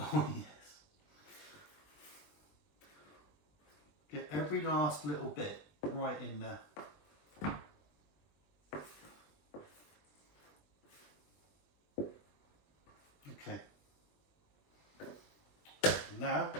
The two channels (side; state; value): right; late; 20 ms